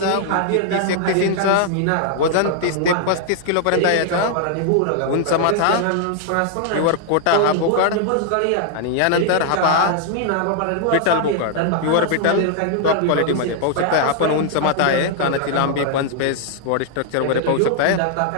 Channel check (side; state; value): both; different; correlation 0.00